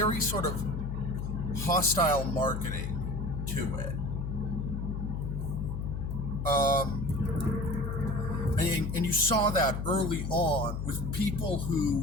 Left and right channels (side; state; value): left; noise; hum, 3 dB below the sound